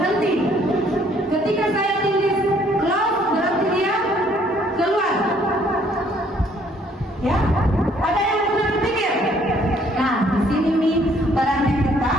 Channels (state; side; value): normal; both; correlation 0.63